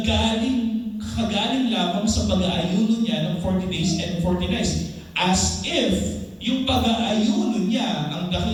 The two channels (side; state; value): both; identical; correlation 1.00